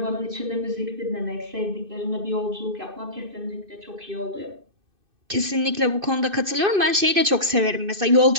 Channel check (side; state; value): left; late; 2.6 ms